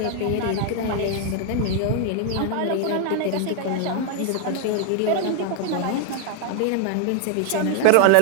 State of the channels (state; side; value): different; both; correlation 0.00